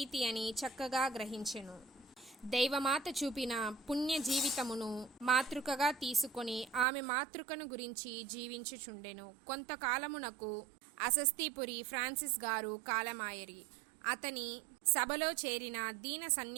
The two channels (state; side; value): drops out; left; at 6.9 s